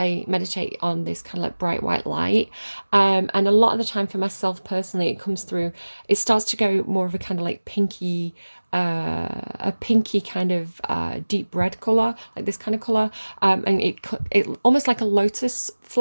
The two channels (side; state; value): both; inverted; correlation -1.00